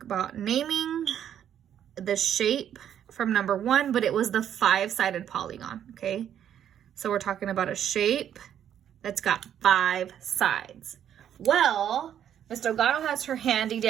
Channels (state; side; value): quieter; left; 9.8 dB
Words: about naming the shape from number 1, but it was the 5-sided polygon, okay? So we're talking about a shape that's got 5 sides. Well, Miss Delgado has her handy